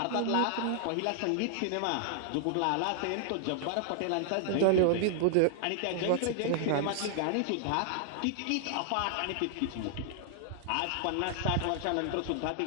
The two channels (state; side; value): different; both; correlation 0.00